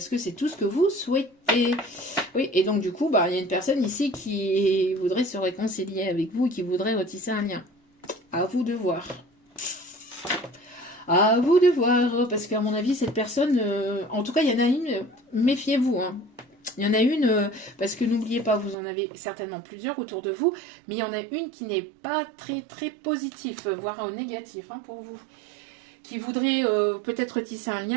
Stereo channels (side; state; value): left; drops out; at 18.8 s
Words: que c'est tout ce que vous souhaitez. Oui, et donc du coup, il y a une personne ici qui voudrait se réconcilier avec vous, qui voudrait retisser un lien. À vous de voir. À vous de voir, parce qu'à mon avis, cette personne, en tout cas, il y en a une, méfiez-vous. Hein. Il y en a une, parce que n'oubliez pas, vous en avez certainement plusieurs autour de vous, mais il y en a une qui n'est pas très très positif, voire négatif hein, pour vous. Qui voudrait peut-être tisser un